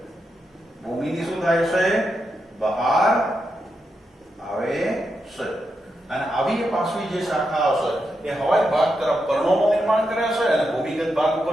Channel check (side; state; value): both; normal; correlation 0.85